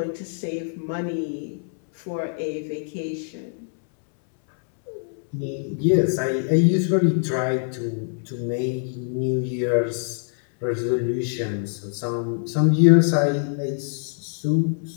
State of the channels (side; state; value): right; silent; 63 dB below the other